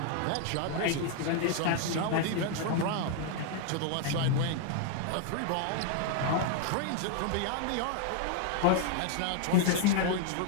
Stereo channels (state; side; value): different; both; correlation 0.00